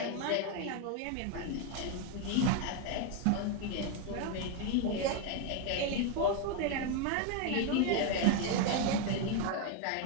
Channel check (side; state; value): both; different; correlation 0.01